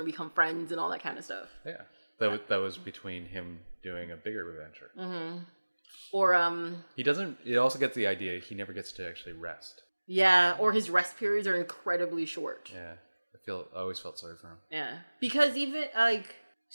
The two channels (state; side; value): inverted; both; correlation -1.00